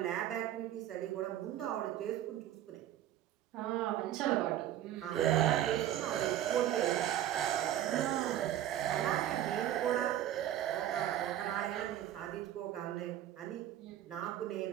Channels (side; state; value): left; quieter; 12.0 dB